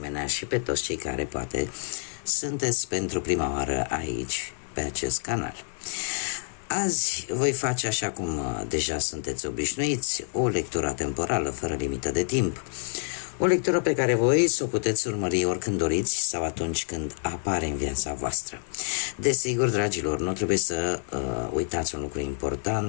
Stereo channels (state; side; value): silent; right; digital silence